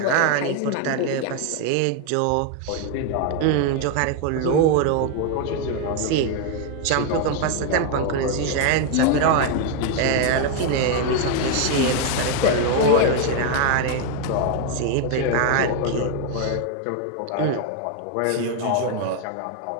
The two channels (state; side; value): different; both; correlation 0.01